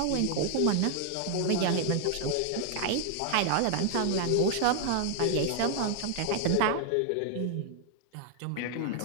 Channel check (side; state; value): both; different; correlation 0.00